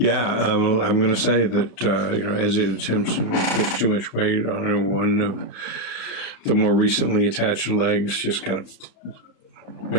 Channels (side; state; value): right; late; 34 ms